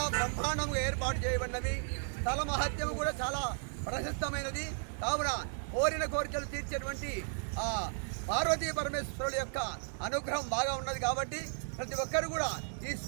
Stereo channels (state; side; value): silent; left; 55 dB below the other